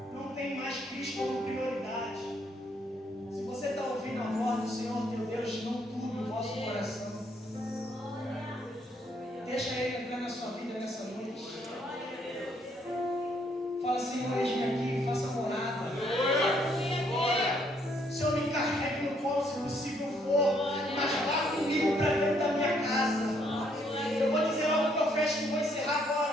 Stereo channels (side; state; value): both; normal; correlation 0.70